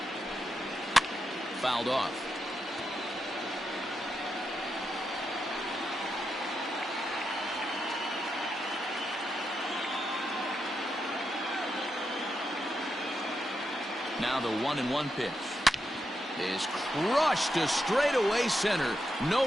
Fouled off. Now the 1-1 pitch is crushed to straightaway center.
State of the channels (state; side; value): normal; both; correlation 0.85